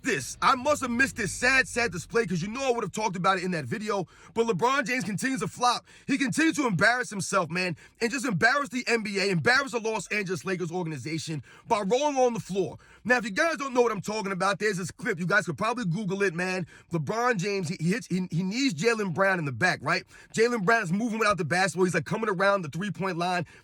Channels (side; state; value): both; identical; correlation 1.00